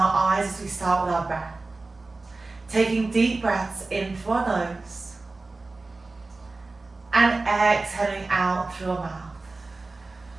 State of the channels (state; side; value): quieter; left; 3.4 dB